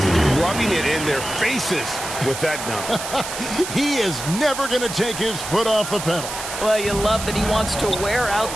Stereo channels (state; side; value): noise; right; hiss, 7 dB below the sound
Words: rubbing it in their faces with that dunk. He is never going to take his foot off the pedal. Well, you love that he wants to wear out